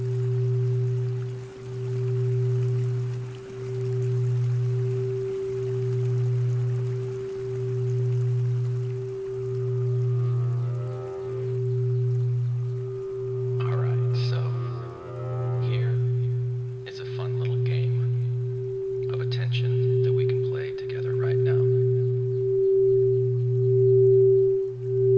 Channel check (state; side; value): identical; both; correlation 1.00